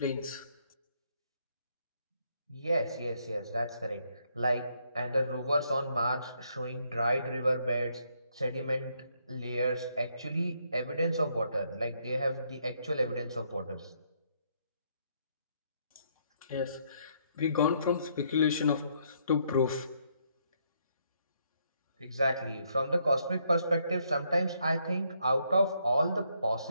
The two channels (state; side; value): inverted; both; correlation -0.73